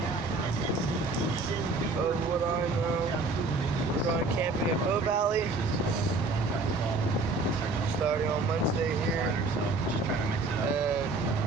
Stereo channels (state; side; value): quieter; left; 3.4 dB